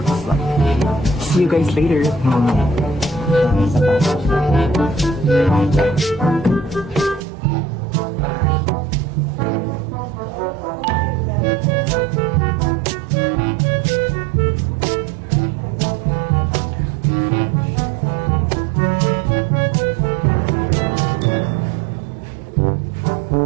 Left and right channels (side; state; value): left; drops out; at 7.2 s